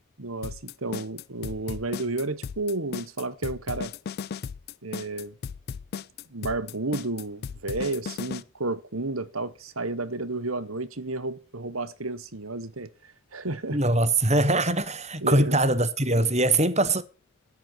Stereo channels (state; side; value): normal; both; correlation 0.26